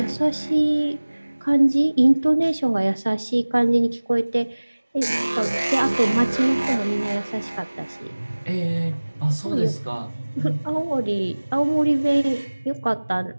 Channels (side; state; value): both; inverted; correlation -1.00